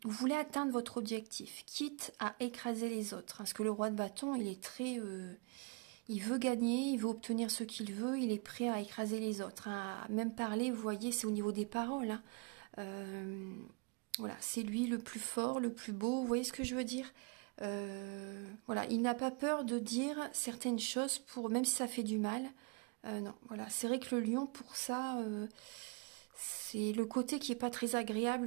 voulez atteindre votre objectif, quitte à écraser les autres. Parce que le roi de bâton, il est très... il veut gagner, il veut obtenir ce qu'il veut, il est prêt à écraser les autres. Hein. À même parler, vous voyez, c'est au niveau des paroles. Hein. Voilà, c'est lui le plus fort, le plus beau, vous voyez ce que je veux dire. Voilà, il n'a pas peur de dire certaines choses, même si ça fait du mal. Non, voilà, c'est vrai que le lion, pour ça, c'est le côté qui n'est pas très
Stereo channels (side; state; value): left; quieter; 30.8 dB